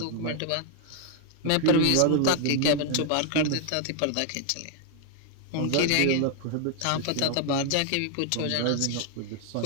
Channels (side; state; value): both; different; correlation 0.00